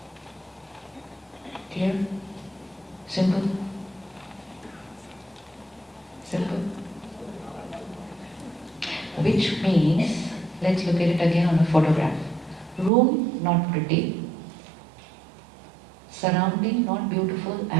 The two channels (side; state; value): left; drops out; at 12.9 s